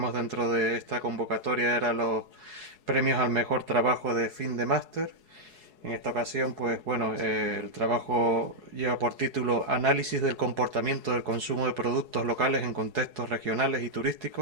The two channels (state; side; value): late; left; 4.7 ms